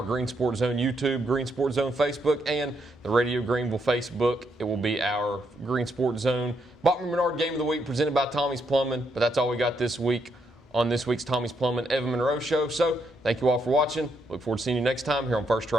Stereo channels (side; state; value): both; normal; correlation 0.77